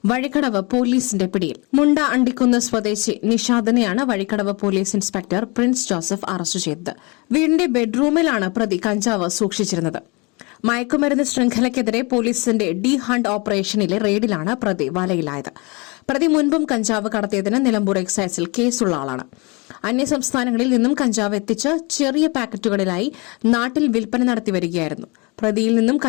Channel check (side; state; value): right; quieter; 28.2 dB